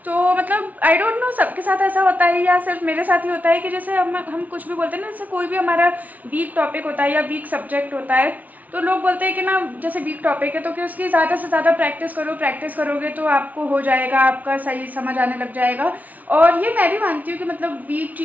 तो मतलब आई डोंट नो सबके साथ ऐसा होता है या सिर्फ मेरे साथ ही होता है कि जैसे हम कुछ भी बोलते हैं ना, जैसे कोई भी हमारा वीक टॉपिक होता है या वीक सब्जेक्ट होता है, तो लोग बोलते हैं कि ना जैसे वीक टॉपिक है तो कि उसकी ज़्यादा से ज़्यादा प्रैक्टिस करो, प्रैक्टिस करोगे तो आपको हो जाएगा, आपका सही समझ आने लग जाएगा। और ये मैं भी मानती हूँ कि मतलब वीक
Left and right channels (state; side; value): late; left; 0.074 ms